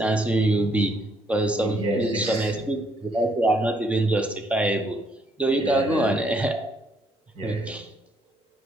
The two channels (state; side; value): normal; both; correlation 0.70